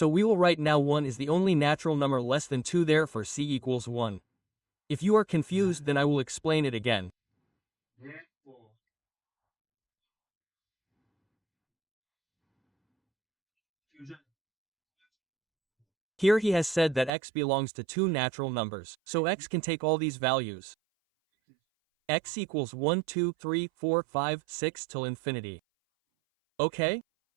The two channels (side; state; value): left; drops out; at 17.1 s